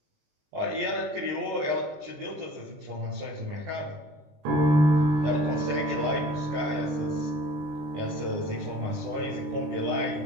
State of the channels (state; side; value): late; left; 20 ms